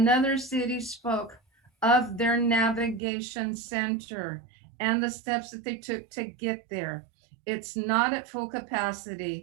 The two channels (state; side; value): drops out; left; at 3.0 s